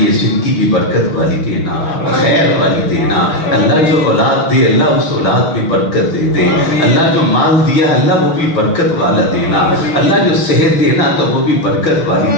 زندگی بھی برکت والی دینا، خیر والی دینا، اللہ جو اولاد دے اللہ اس اولاد میں برکت دے دے، اللہ جو مال دیا اللہ وہ بھی برکت والا دینا، اللہ جو صحت دینا تو وہ بھی برکت والی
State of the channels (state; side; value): late; right; 6.1 ms